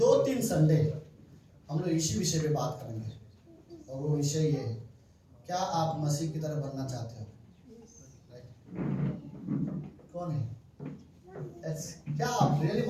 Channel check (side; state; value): both; identical; correlation 1.00